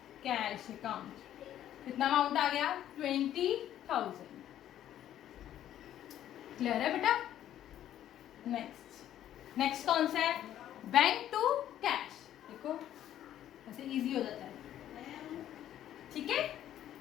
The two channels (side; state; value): right; quieter; 11.6 dB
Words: cash account. कितना अमाउंट आ गया 20,000। क्लियर है बेटा। नेक्स्ट कौन सा है, बैंक टू कैश। देखो ऐसे इजी हो जाता है। ठीक है,